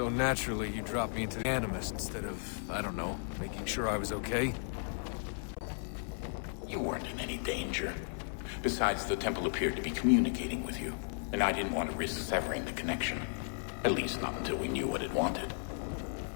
naturally, you dropped me into the Animus instead of, I don't know, making sure I was okay? You weren't in any danger. Besides, the temple appeared to be communicating with you, and I didn't want to risk severing the connection. At least not until we knew what it wanted.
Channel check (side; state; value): right; silent; 54 dB below the other